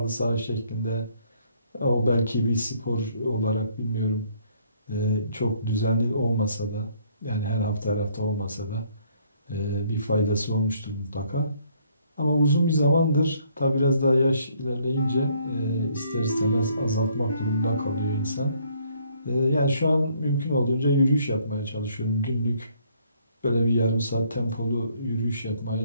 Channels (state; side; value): inverted; both; correlation -0.65